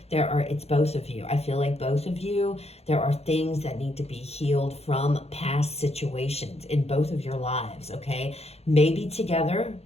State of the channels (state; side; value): late; right; 0.30 ms